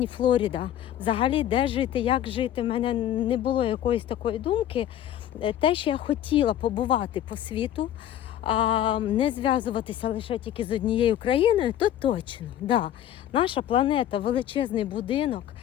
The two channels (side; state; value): right; quieter; 11.4 dB